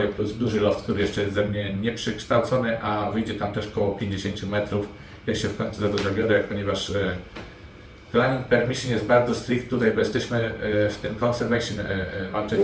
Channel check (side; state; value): both; identical; correlation 1.00